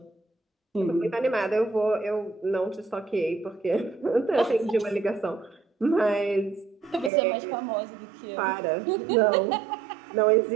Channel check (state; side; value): drops out; left; at 7.1 s